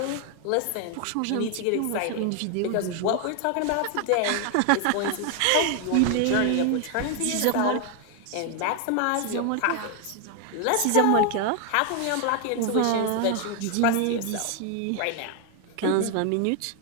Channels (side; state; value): both; different; correlation 0.00